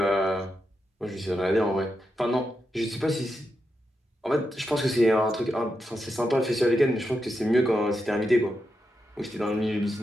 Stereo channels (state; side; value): normal; both; correlation 0.86